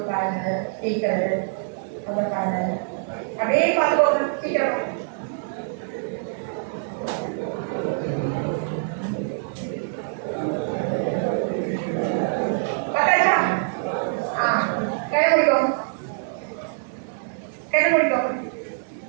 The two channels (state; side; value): silent; left; digital silence